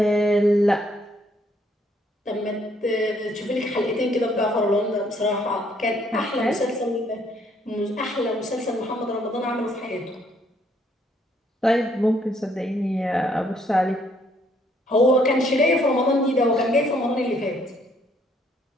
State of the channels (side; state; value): both; normal; correlation 0.67